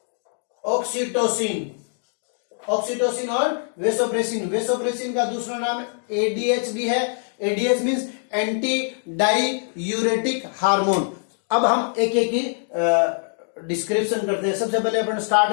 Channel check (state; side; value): silent; right; 56 dB below the other